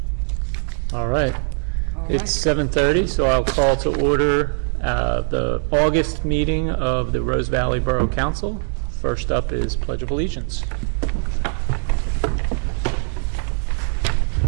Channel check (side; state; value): left; silent; digital silence